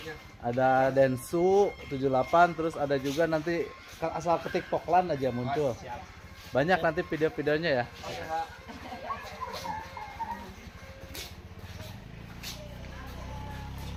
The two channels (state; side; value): identical; both; correlation 1.00